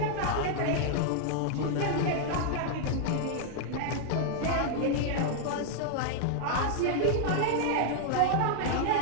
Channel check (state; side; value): different; both; correlation -0.01